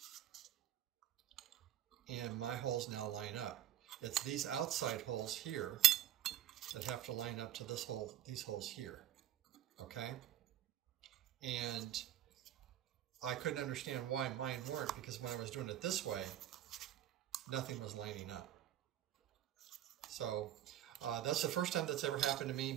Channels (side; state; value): left; quieter; 11.7 dB